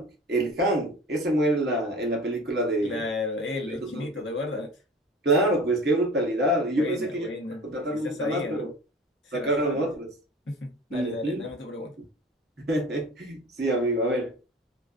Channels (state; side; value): normal; both; correlation 0.39